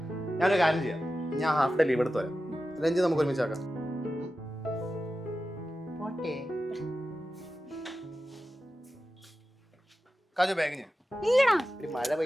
ഞാനൊരു കാര്യം ചെയ്യാം, ഞാൻ ഹാഫ് ഡേ ലീവ് എടുത്ത് വരാം. ലഞ്ച് നമുക്ക് ഒരുമിച്ചാക്കാം. കാജു ബാഗ് ഞാൻ മഴ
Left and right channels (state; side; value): normal; both; correlation 0.93